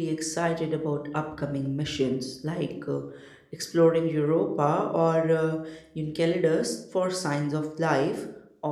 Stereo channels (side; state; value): both; identical; correlation 1.00